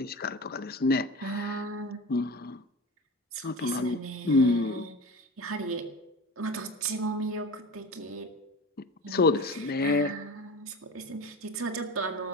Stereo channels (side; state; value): both; normal; correlation 0.32